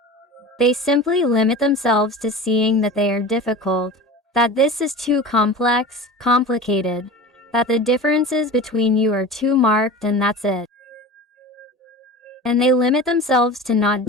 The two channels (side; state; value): both; normal; correlation 0.34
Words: They simply limit themselves to seeing that they are difficult, that this is too complex, complicated, that the differences between you are too marked, and that's it. And they limit themselves to not